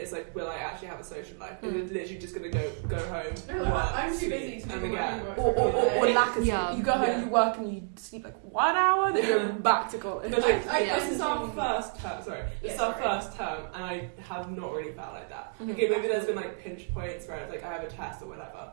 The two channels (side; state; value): left; silent; 58 dB below the other